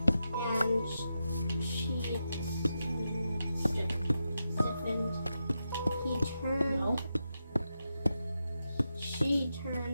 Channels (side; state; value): both; inverted; correlation -0.87